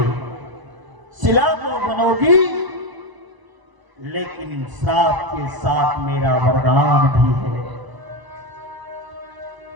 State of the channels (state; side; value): late; left; 1.0 ms